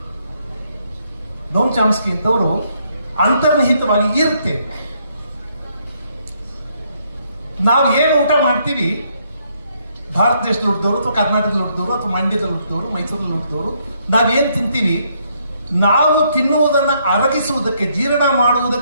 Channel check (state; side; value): inverted; both; correlation -0.72